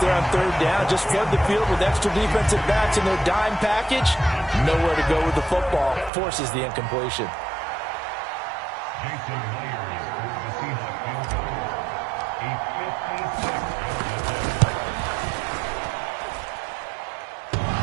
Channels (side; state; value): left; drops out; at 6.1 s